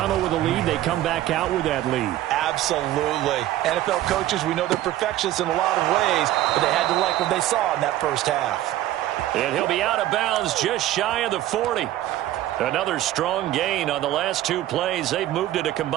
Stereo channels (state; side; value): quieter; left; 14.1 dB